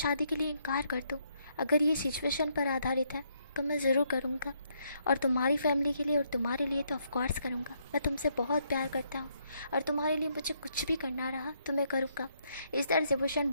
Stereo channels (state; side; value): inverted; both; correlation -0.73